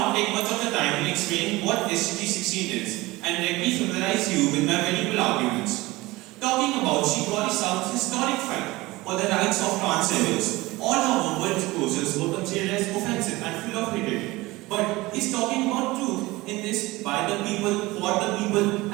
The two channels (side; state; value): left; quieter; 20.5 dB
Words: take much of the time in explaining what SDG 16 is and let me familiarize you with my valuable arguments. Talking about Shikori South's historic fight for the rights of trans rebels, all her verbal disclosures were considered as offensive and full of hatred. But is talking about truth in this by the people, for the people,